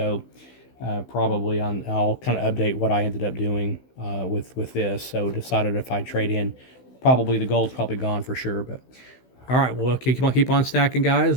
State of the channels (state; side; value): late; right; 16 ms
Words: Probably I'll kind of update what I ended up doing with this. So decided if I trade in, probably the gold's probably gone for sure. But all right, well keep on stacking, guys,